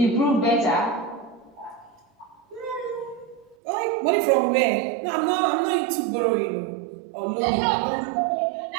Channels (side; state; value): left; drops out; at 3.6 s